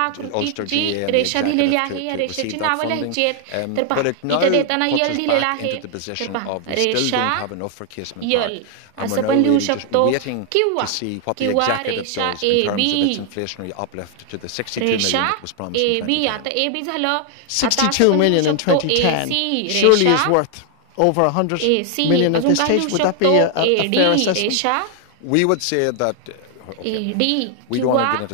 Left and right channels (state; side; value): different; both; correlation 0.00